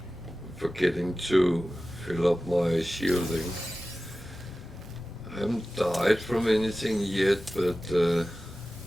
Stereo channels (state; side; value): normal; both; correlation 0.95